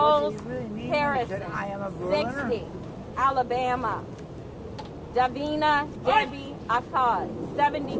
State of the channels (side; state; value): both; identical; correlation 1.00